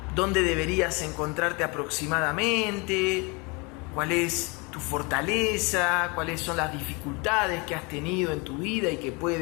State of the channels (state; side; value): quieter; right; 28.9 dB